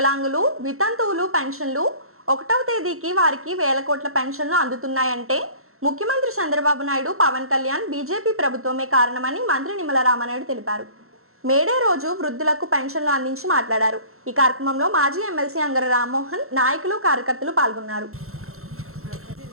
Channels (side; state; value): left; late; 0.63 ms